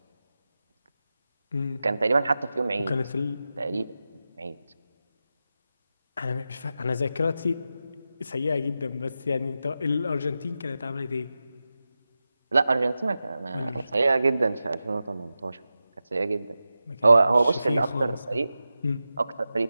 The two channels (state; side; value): inverted; both; correlation -0.92